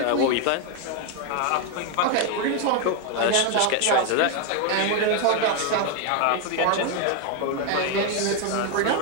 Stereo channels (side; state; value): both; different; correlation 0.01